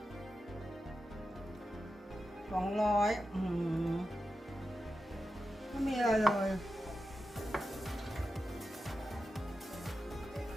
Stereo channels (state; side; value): normal; both; correlation 0.91